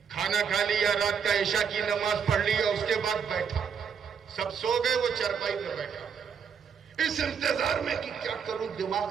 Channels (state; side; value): quieter; left; 6.9 dB